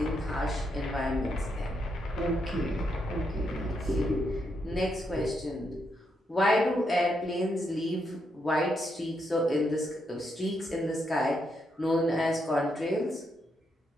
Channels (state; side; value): normal; both; correlation 0.80